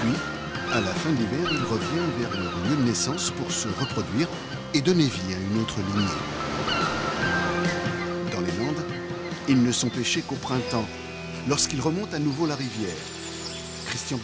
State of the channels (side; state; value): both; identical; correlation 1.00